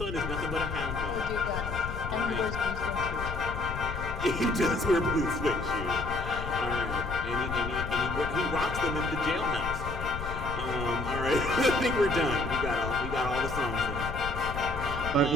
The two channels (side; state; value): left; noise; rumble, 6 dB below the sound